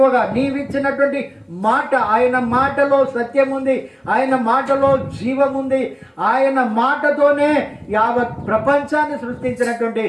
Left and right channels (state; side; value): identical; both; correlation 1.00